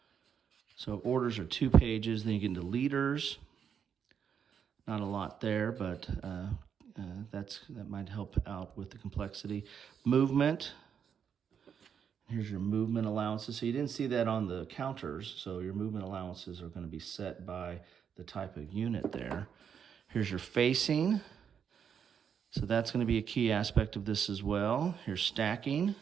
So orders are 2 pages. Then you get into leaders. Not a lot there, but that might help out with the complexity. Movement. Here's your movement allowances. So you didn't see that on the counters. So your movement allowances are going to be set by the type of unit there. Here's your facing. So that's going to be a key aspect of this as well. Here's stacking.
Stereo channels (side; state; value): left; quieter; 7.6 dB